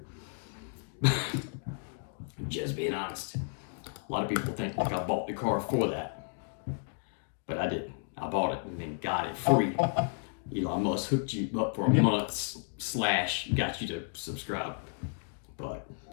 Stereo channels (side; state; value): right; silent; 56 dB below the other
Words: just being honest. A lot of people think like I bought the car for that, but I didn't. I bought it and then got it free. Elon Musk hooked you up for a month / got you to subscribe. But